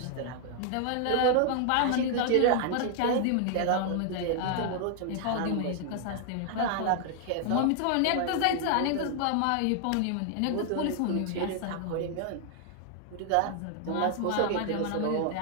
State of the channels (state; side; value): different; both; correlation 0.00